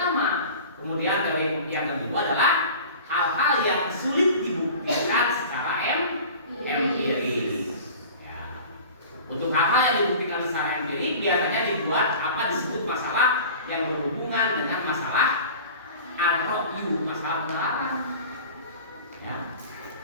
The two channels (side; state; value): both; inverted; correlation -0.40